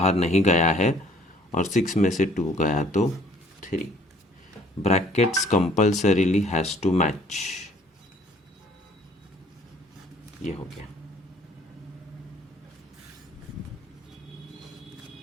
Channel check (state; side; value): normal; both; correlation 0.57